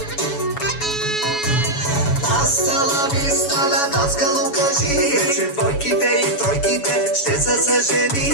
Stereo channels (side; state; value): right; late; 7.1 ms